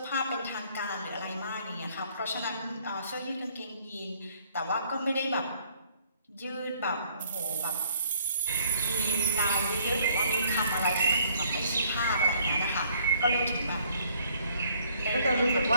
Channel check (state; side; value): inverted; both; correlation -0.64